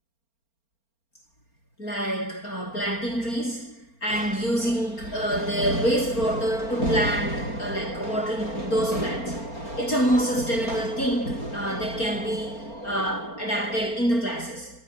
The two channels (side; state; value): right; late; 4.4 ms